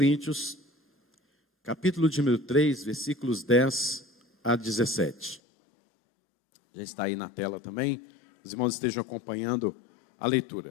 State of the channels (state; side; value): drops out; right; at 5.4 s